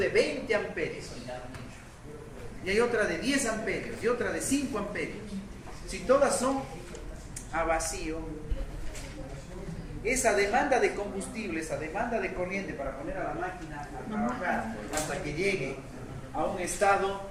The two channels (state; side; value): identical; both; correlation 1.00